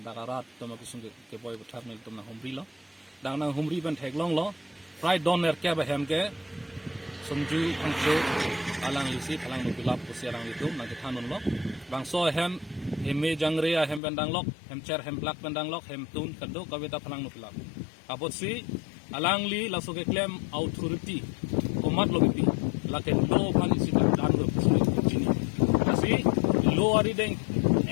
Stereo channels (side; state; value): right; drops out; at 14.0 s